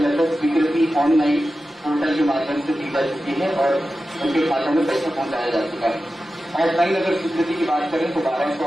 लगभग स्वीकृति ऑनलाइन पोर्टल के माध्यम से दी जा चुकी है और उनके खातों में पैसा पहुंचाया जा चुका है। ऑफलाइन अगर स्वीकृति की बात करें तो 1200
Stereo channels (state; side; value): normal; both; correlation 0.93